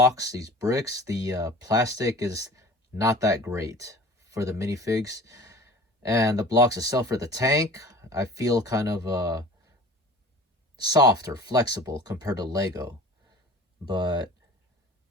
these bricks, the plastic is not that great for the minifigs. And the blocks itself for the tank, I feel kind of soft or flexible compared to Lego. But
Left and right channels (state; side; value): normal; both; correlation 0.42